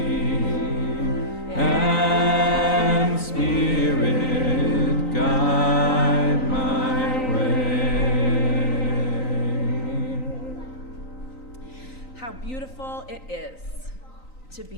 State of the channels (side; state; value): right; late; 3.9 ms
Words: And Spirit, guide my way. How beautiful it is to